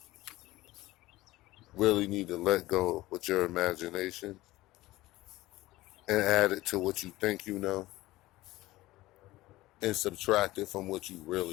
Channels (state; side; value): quieter; right; 17.9 dB